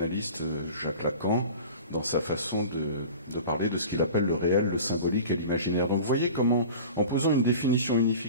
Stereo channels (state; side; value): inverted; both; correlation -0.38